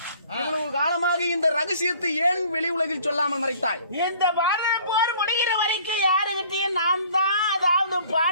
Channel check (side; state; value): both; inverted; correlation -0.54